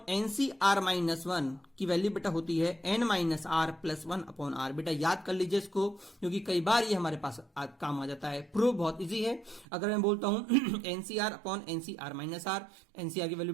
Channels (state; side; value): drops out; left; at 9.7 s